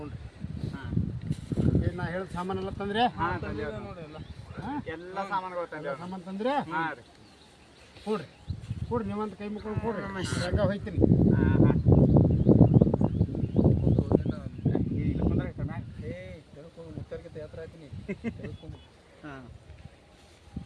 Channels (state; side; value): identical; both; correlation 1.00